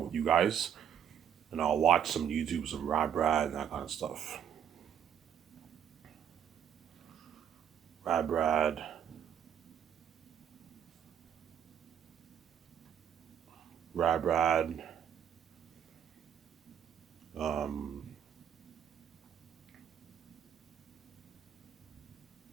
you guys. And I'll watch some YouTube, some Brad and that kind of stuff. Brad. Um,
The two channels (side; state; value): left; quieter; 8.9 dB